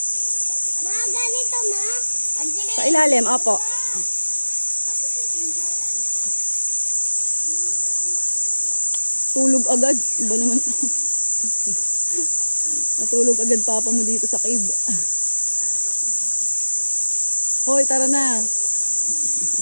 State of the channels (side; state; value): both; inverted; correlation -1.00